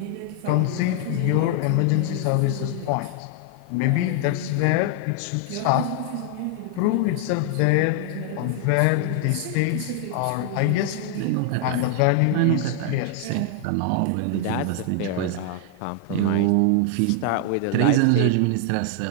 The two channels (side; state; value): both; different; correlation 0.00